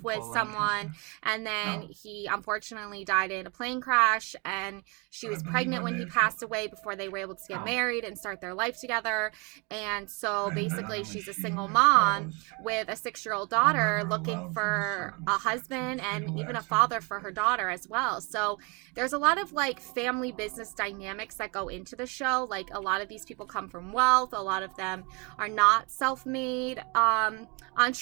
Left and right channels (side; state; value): left; quieter; 30.6 dB